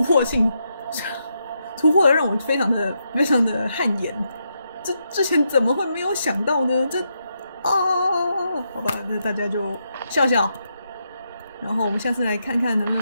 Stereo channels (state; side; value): inverted; both; correlation -0.82